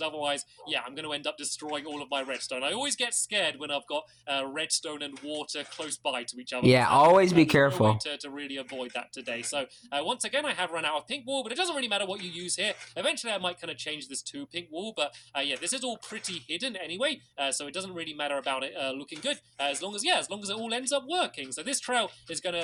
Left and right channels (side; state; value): both; identical; correlation 1.00